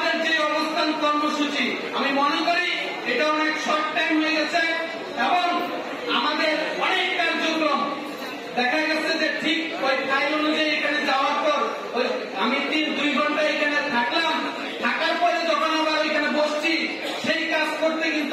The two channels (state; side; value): identical; both; correlation 1.00